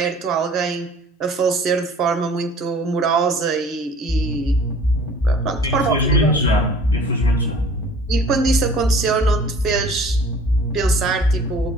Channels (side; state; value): both; normal; correlation 0.48